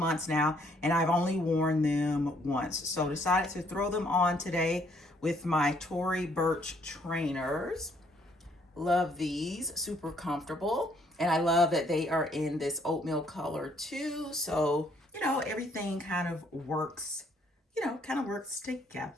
now, and I've only worn them once. So decided to throw them on today with my Tory Burch trainers. Love these, super comfortable. And I love that they are in this oatmeal color too. So, everything kind of works, works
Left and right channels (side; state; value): both; normal; correlation 0.66